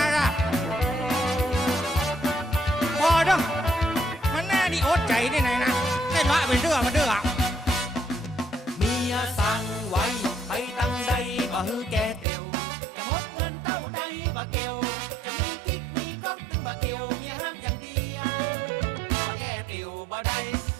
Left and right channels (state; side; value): drops out; left; at 12.2 s